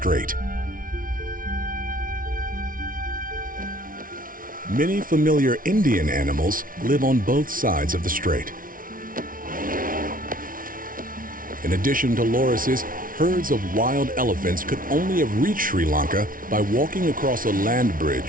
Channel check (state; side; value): late; left; 0.40 ms